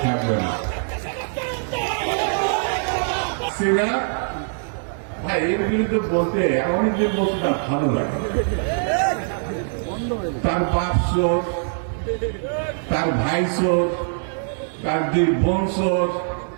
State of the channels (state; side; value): silent; left; digital silence